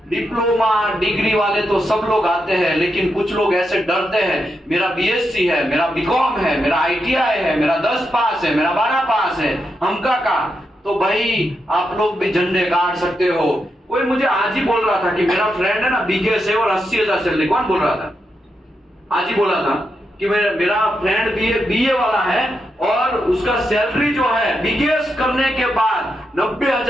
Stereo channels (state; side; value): normal; both; correlation 0.84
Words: डिप्लोमा डिग्री वाले तो सब लोग आते हैं, लेकिन कुछ लोग ऐसे डरते हैं, मेरा बीएससी है, मेरा बीकॉम है, मेरा आईटीआई है, मेरा 10 पास है, मेरा 12 पास है, हमका का। तो भाई आप लोग भी झंडे गाड़ सकते हो। कोई मुझे आज ही बोल रहा था कि मेरा फ्रेंड है ना बीकेएस है और 80,000 सैलरी। कौन बोल रहा था? आज ही बोला था कि मेरा फ्रेंड बीए वाला है और उसका सैलरी जो है बीकेएस करने के बाद